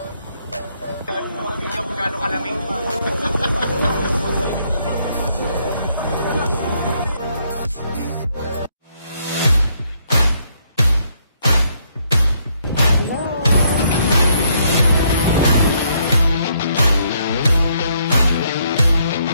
Hindi ako gano'ng kalamig.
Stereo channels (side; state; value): both; inverted; correlation -0.71